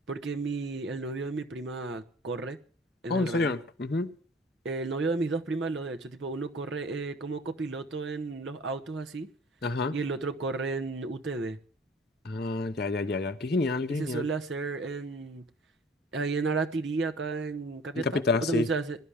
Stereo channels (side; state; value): both; normal; correlation 0.47